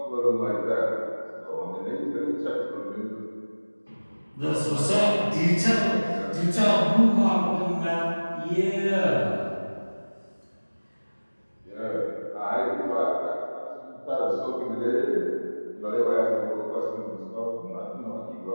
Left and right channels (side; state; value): both; inverted; correlation -1.00